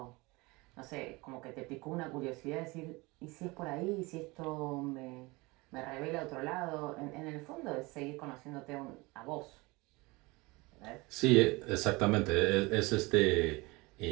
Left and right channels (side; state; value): left; quieter; 24.0 dB